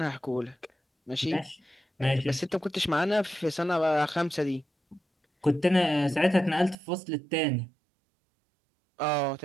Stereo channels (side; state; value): left; drops out; at 6.8 s